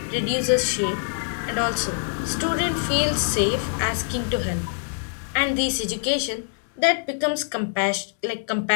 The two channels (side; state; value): right; silent; 62 dB below the other